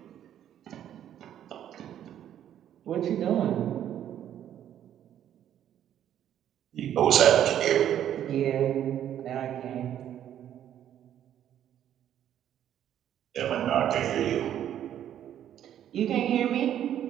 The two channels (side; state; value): left; quieter; 10.6 dB